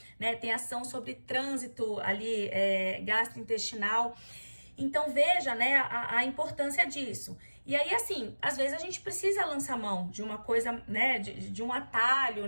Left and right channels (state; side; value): inverted; both; correlation -1.00